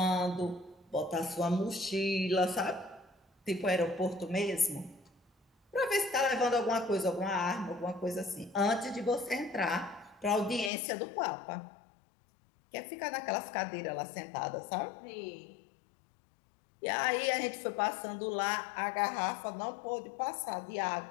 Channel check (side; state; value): right; drops out; at 10.7 s